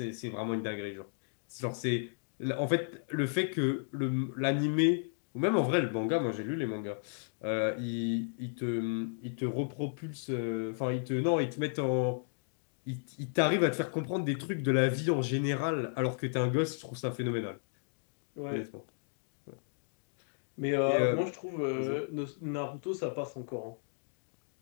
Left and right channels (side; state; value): right; silent; digital silence